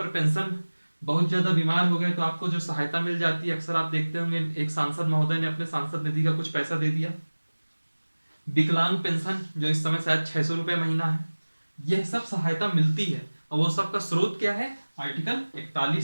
पेंशन, बहुत ज्यादा बीमार हो गए तो आपको जो सहायता मिल जाती है, अक्सर आप देखते होंगे एक सांसद महोदय ने अपने सांसद निधि का कुछ पैसा दे दिया। विकलांग पेंशन जो इस समय शायद 600 रुपये महीना है, यह सब सहायता मिलती है और वो सब का स्रोत क्या है, आर्टिकल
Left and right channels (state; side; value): inverted; both; correlation -1.00